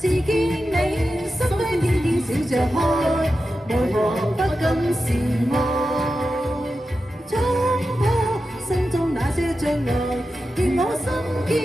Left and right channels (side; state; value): both; normal; correlation 0.91